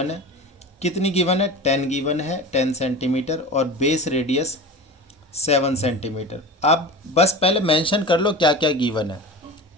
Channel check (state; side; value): normal; both; correlation 0.32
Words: है। कितनी गिवन है? 10 गिवन है, 10 सेंटीमीटर, और बेस रेडियस 7 सेंटीमीटर। अब बस पहले मेंशन कर लो क्या क्या गिवन है।